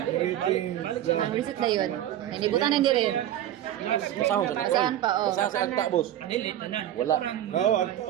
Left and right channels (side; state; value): left; quieter; 12.1 dB